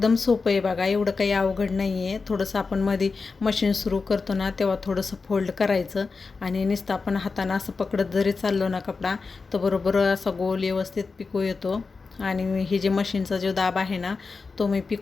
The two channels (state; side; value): quieter; right; 4.4 dB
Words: सोपं आहे बघा, एवढं काही अवघड नाही आहे. थोडंसं आपण मध्ये मशीन सुरू करतो ना तेव्हा थोडंसं फोल्ड करायचं आणि नुसतं आपण हातानं असं पकडत जरी चाललो ना कपडा, तर बरोबर असा गोल व्यवस्थित पिको येतो. आणि हे जे मशीनचा जो दाब आहे ना तो मी